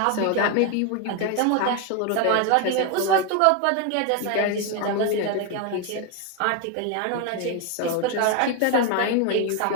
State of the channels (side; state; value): both; different; correlation 0.01